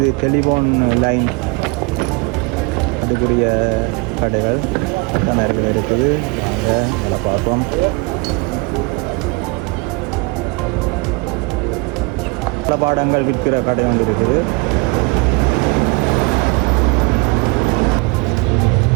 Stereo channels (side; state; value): left; quieter; 27.6 dB